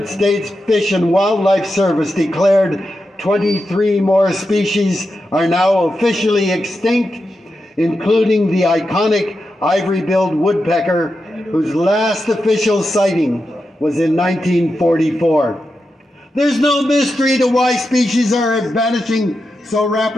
States Fish and Wildlife Service declared 23 more species are now officially extinct, including the iconic ivory-billed woodpecker, whose last official sighting was in 1944. There's no mystery to why species are vanishing so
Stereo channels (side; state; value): both; normal; correlation 0.88